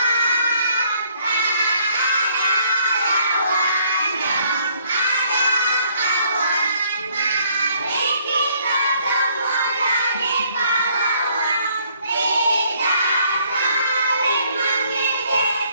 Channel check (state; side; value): inverted; both; correlation -0.65